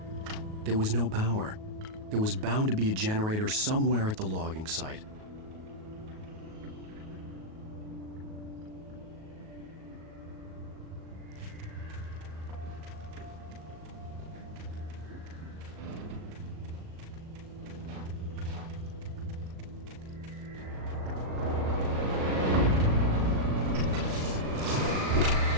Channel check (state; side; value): late; left; 38 ms